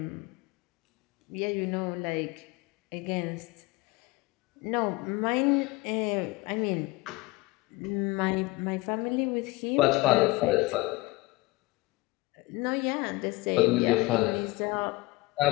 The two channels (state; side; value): quieter; right; 21.9 dB